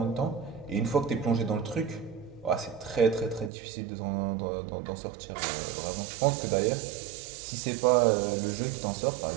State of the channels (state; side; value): drops out; left; at 3.5 s